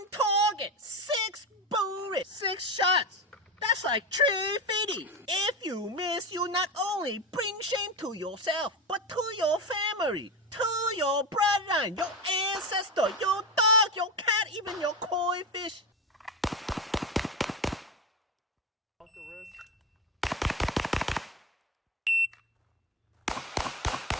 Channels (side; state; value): both; normal; correlation 0.19